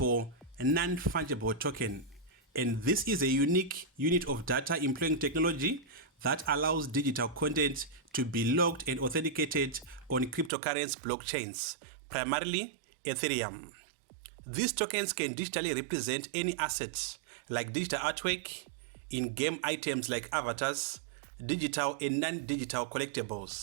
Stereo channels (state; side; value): drops out; left; at 10.5 s